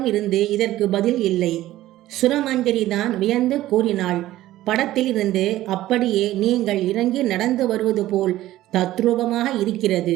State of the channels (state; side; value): quieter; left; 15.0 dB